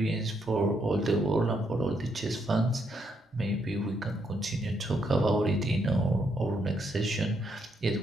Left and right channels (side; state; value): both; normal; correlation 0.76